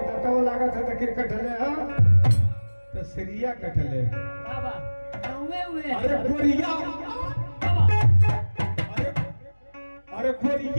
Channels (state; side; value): inverted; both; correlation -1.00